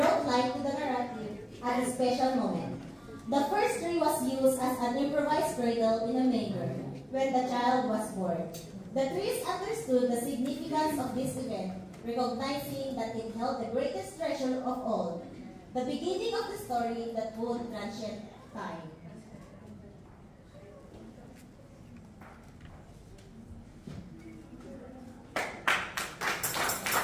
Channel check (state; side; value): identical; both; correlation 1.00